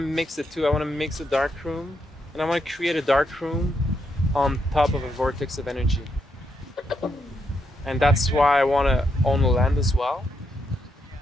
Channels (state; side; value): normal; both; correlation 0.80